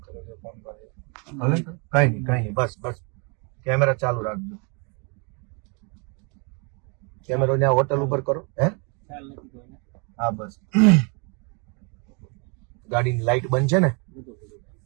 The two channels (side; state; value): left; quieter; 33.9 dB